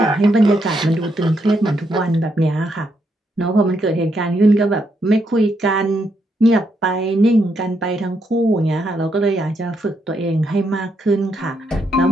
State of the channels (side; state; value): both; normal; correlation 0.78